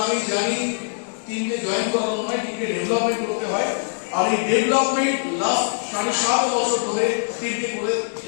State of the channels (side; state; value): right; silent; digital silence